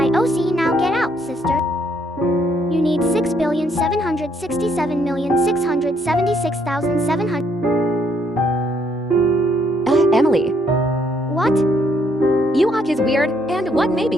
OC, now get out, sister. You need 6,767,676,700. Emily. What? You walk is weird, and what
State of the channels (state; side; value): normal; both; correlation 0.70